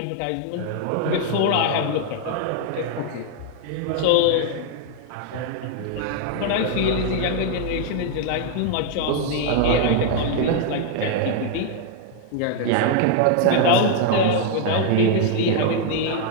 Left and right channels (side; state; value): both; different; correlation 0.00